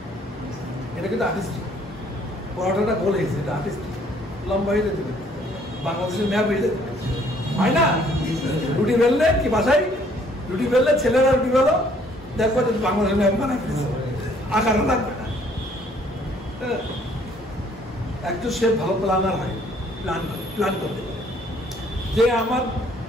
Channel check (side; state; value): both; normal; correlation 0.62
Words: এটা কিন্তু আর্টিস্টিক। পরোটাটা গোল হয়েছে, এটা আর্টিস্টিক। লম্বা হয়ে যেতে পারে, বাংলাদেশের ম্যাপ হয়ে যেতে পারে, হয় না? রুটি বেললে কি বাসায় রুটি বেললে ছেলেরা রুটি বেলো, দেখবো যে বাংলাদেশের ম্যাপ বানাই ফেলেছে, আকারও লাগবে না। একজন শেফ ভালো প্ল্যানার হয়, প্ল্যান করতে পারে। যে আমার